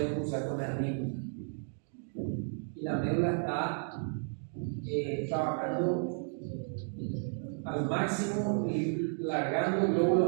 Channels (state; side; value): silent; left; 56 dB below the other